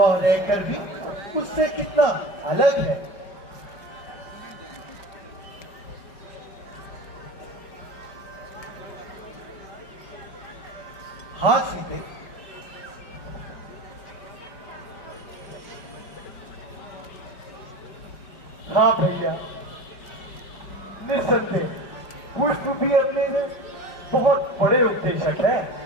रहकर भी उससे कितना अलग है। हाँ सीते, हाँ भैया, निस्संदेह पुष्प भी अपने में बहुत बड़े उपदेशक है।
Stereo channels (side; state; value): right; late; 4.9 ms